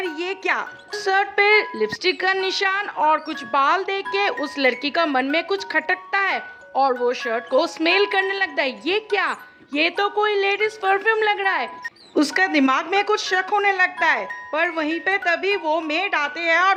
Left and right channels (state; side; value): identical; both; correlation 1.00